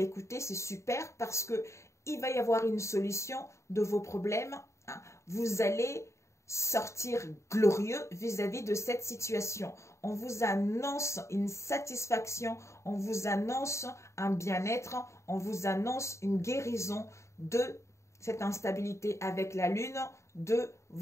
écoutez, c'est super parce que il va y avoir une solution de vos problèmes. Vous allez sortir glorieux vis-à-vis de cette situation. On vous annonce une satisfaction, on vous annonce un bien-être, on vous annonce une guérison de cette instabilité avec la lune de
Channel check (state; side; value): late; right; 0.14 ms